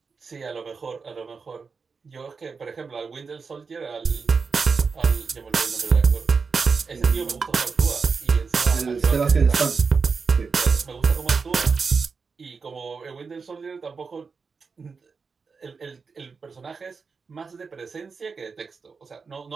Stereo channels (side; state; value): left; quieter; 5.0 dB